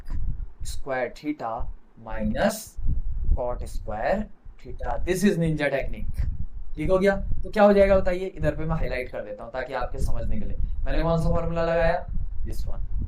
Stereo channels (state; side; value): identical; both; correlation 1.00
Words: square theta minus cot square theta. This is ninja technique, ठीक हो गया। तो क्या हो जाएगा बताइए, इधर पे मैं हाईलाइट कर देता हूं ताकि आपके समझने के लिए। मैंने कौन सा फॉर्मूला लगाया, दिस वन,